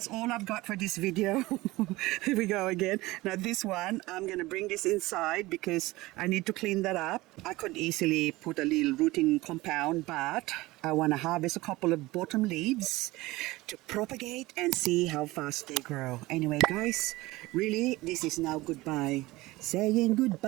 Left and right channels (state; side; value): quieter; left; 19.8 dB